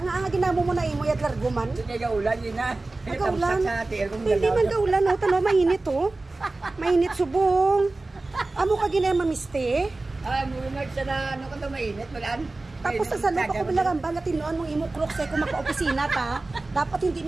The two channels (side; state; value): left; quieter; 3.2 dB